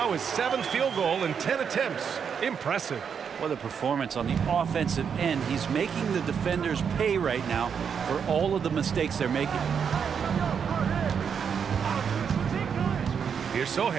his 7th field goal in 10 attempts. Impressive. What a performance on the offensive end. He's making the defenders pay right now for all of the mistakes they're making. Here's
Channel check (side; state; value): left; quieter; 7.0 dB